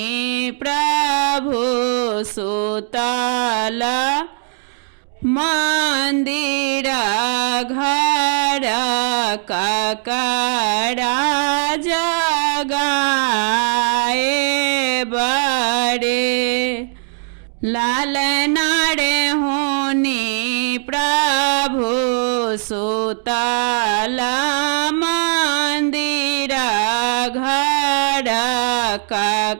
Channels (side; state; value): left; silent; digital silence